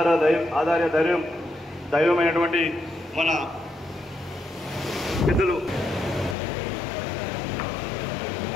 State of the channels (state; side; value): drops out; right; at 6.4 s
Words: దైవమైనటువంటి మన పెద్దలు